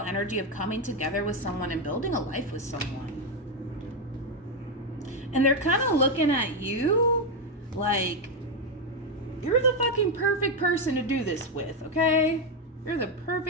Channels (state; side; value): normal; both; correlation 0.06